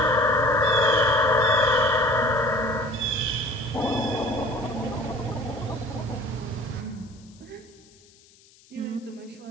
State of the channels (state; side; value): noise; left; hiss, 28 dB below the sound